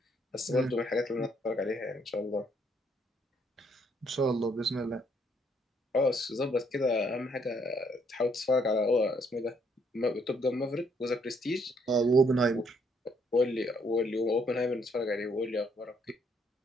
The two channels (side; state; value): both; normal; correlation 0.69